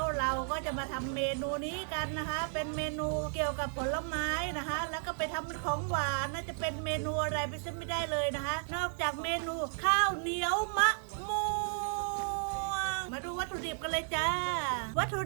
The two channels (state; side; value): silent; left; 55 dB below the other